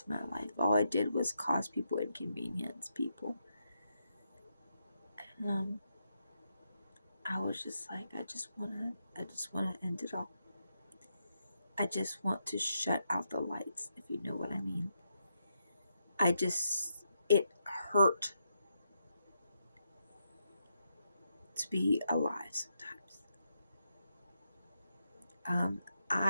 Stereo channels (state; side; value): inverted; both; correlation -0.82